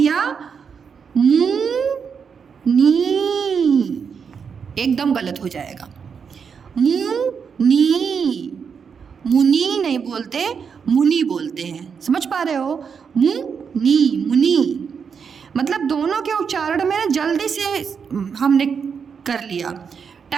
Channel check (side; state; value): left; quieter; 6.4 dB